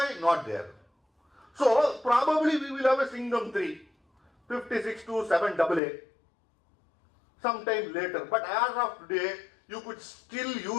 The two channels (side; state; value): right; drops out; at 5.8 s